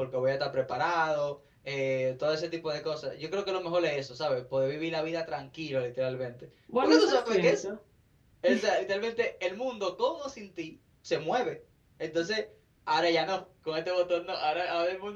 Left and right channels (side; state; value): both; identical; correlation 1.00